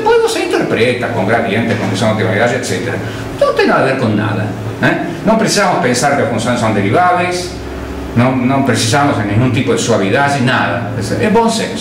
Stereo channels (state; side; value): identical; both; correlation 1.00